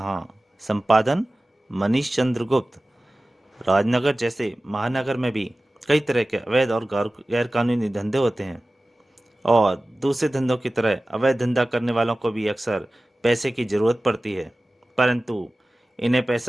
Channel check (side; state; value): both; normal; correlation 0.97